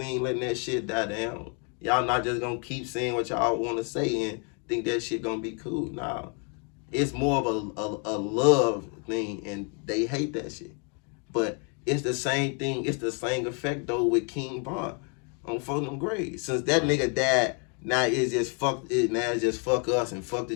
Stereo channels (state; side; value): quieter; right; 38.3 dB